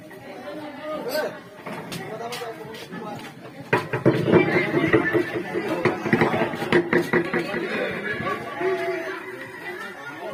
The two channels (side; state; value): both; identical; correlation 1.00